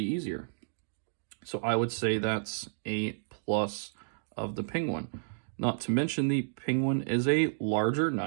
easier. So I would say that's a plus of the Penguin. Not to mention the Penguin is a larger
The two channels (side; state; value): left; silent; digital silence